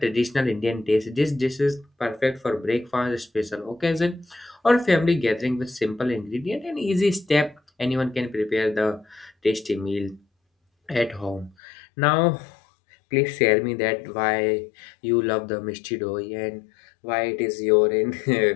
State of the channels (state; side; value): drops out; right; at 11.6 s